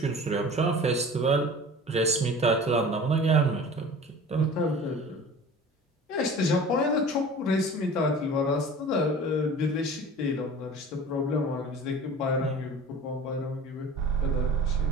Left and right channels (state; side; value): normal; both; correlation 0.40